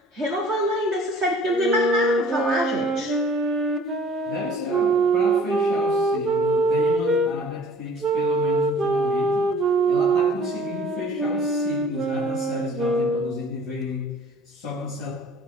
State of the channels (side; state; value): both; normal; correlation 0.50